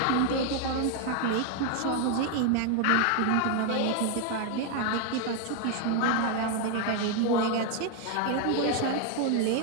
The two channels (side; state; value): both; different; correlation 0.00